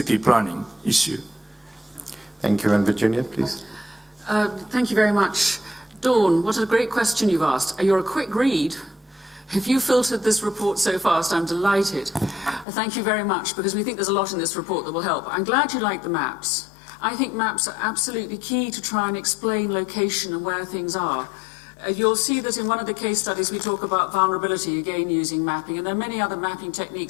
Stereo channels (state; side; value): drops out; right; at 12.7 s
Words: planning issue. Thank you. And Virginia, please. Thank you very much. Dawn, what a great question you've asked. You're a quick read. If you filtered this report so fast, I'm delighted. Thank you very much, because we think there's a lot in this report that will help. I'm glad you like the maps. I think maps are absolutely key to try and explain location and where things are. You'll see that in one of the case studies we talk about vulnerability, again using mapping, and there are many other mapping